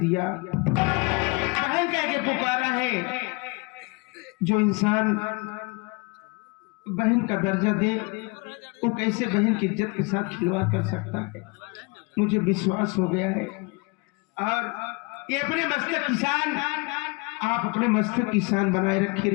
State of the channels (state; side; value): quieter; right; 28.6 dB